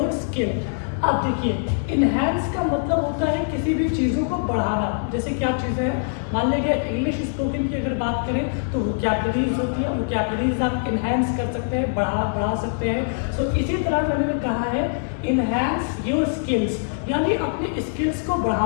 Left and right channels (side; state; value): right; silent; digital silence